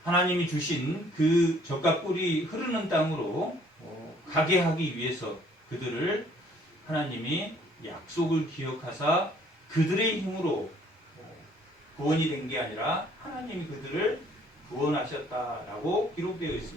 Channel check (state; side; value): normal; both; correlation 0.60